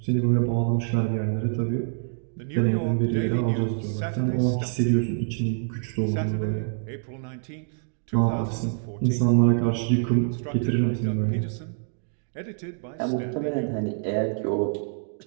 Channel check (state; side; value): silent; left; 61 dB below the other